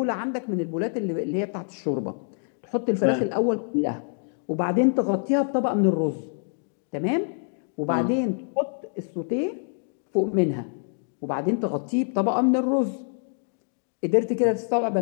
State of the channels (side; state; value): right; silent; 61 dB below the other